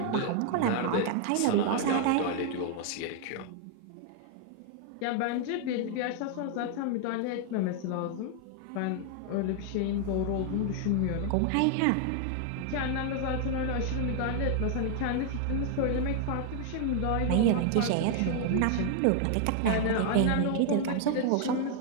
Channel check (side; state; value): both; different; correlation 0.00